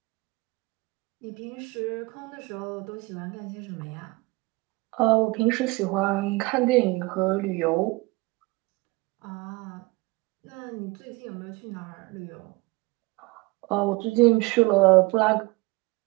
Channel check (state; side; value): quieter; left; 24.5 dB